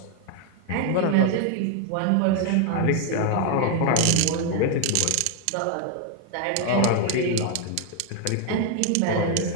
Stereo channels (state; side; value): different; both; correlation 0.01